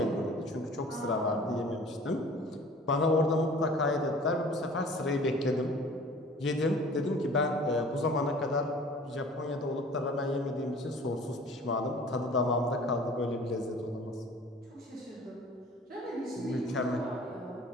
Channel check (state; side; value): normal; both; correlation 0.47